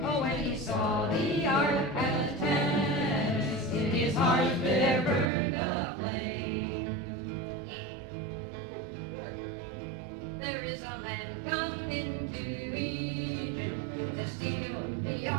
Oh, when he saw the ark at Tanis, in his heart there burned a flame. There is a man come into Egypt to steal the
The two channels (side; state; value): left; drops out; at 5.3 s